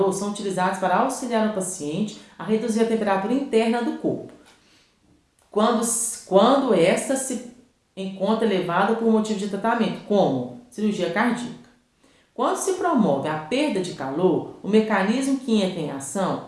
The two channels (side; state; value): both; identical; correlation 1.00